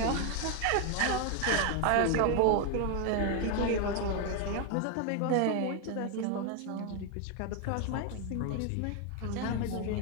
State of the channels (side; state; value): both; different; correlation 0.01